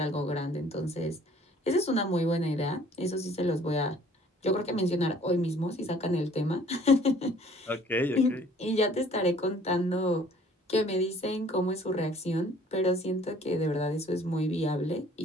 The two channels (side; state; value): both; normal; correlation 0.55